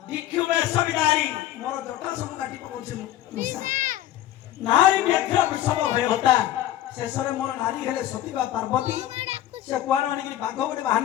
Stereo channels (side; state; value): right; quieter; 13.0 dB